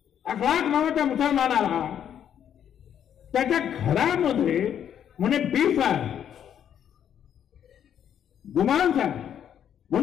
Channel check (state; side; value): quieter; right; 9.3 dB